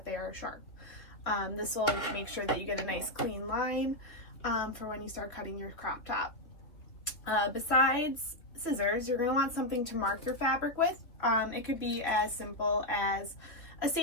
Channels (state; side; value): late; right; 2.8 ms